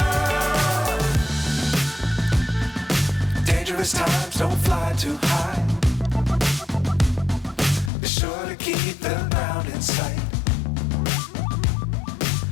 Times don't fly too high. Be sure to keep the ground in sight.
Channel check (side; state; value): right; drops out; at 7.9 s